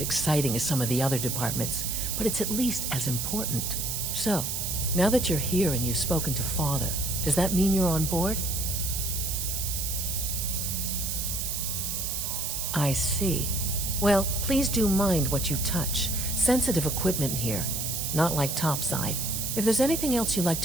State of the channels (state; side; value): noise; right; hiss, 2 dB below the sound